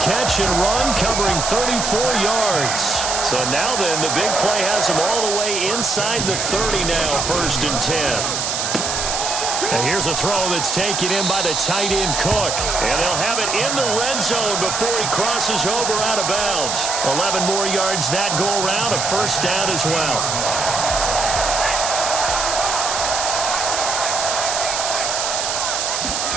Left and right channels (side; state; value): right; noise; hiss, 1 dB below the sound